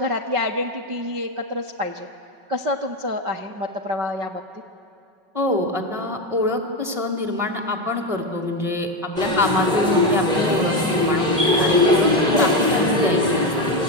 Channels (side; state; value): left; late; 5.3 ms